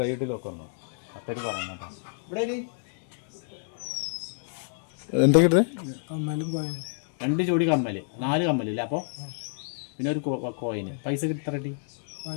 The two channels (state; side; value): silent; right; digital silence